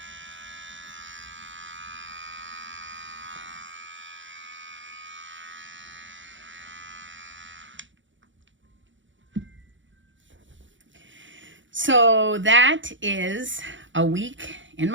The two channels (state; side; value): late; left; 0.55 ms